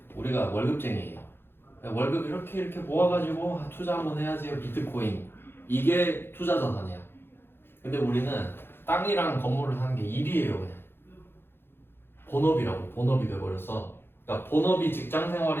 우리가 월급쟁이에요. 월급 이렇게 모아가지고 투자 한번 해야지. 비트코인 이게 투자 자산이야. 근데 우리는 땅이랑 건물을 사는 게 일이에요 그냥. 본업이 돼버렸어. 그러니까 본업이 직장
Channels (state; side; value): late; right; 0.11 ms